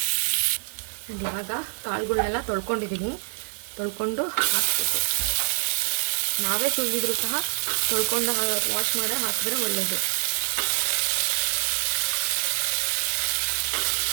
ಇವಾಗ ಕಾಳುಗಳನ್ನೆಲ್ಲ ತೊಳ್ಕೊಂಡು ಹಾಕಬೇಕು. ನಾವೇ ತುಳಿದ್ರು ಸಹ ತೊಳ್ಕೊಂಡು ವಾಶ್ ಮಾಡಿ ಹಾಕಿದ್ರೆ ಒಳ್ಳೆಯದು.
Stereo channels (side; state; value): left; silent; 61 dB below the other